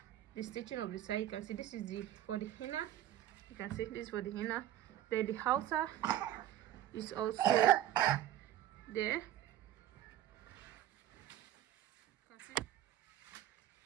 The stitching of the side, you can see this is for the inner. You can see this is for the inner. Then the outer is also there. You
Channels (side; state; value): left; quieter; 12.5 dB